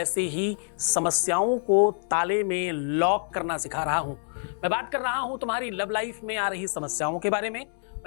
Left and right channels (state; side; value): silent; right; 60 dB below the other